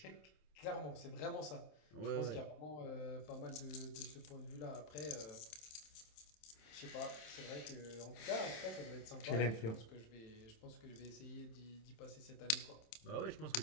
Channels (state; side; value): late; right; 27 ms